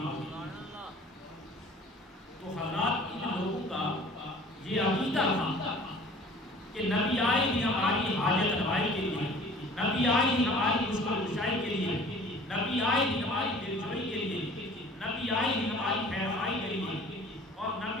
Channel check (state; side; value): normal; both; correlation 0.48